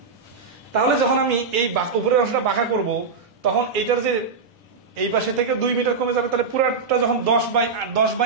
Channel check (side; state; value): left; quieter; 4.8 dB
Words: তাহলে যখন আমি এই উপরের অংশটা বাঁকা করব, তখন এইটার যে এই পাশে থেকে 2 মিটার কমে যাবে, তাহলে পুরাটা যখন